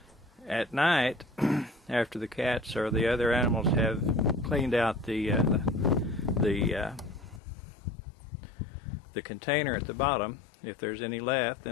at night, after the cats or the other animals have cleaned out the container at the bottom, if there's any left,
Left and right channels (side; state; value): right; drops out; at 7.4 s